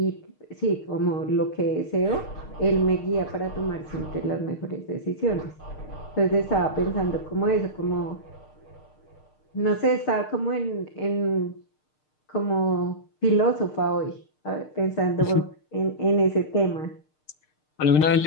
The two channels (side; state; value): right; late; 6.6 ms